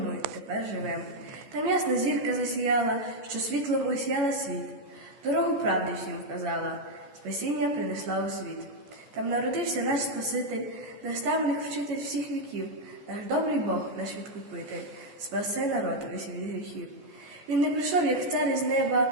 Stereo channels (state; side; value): late; left; 14 ms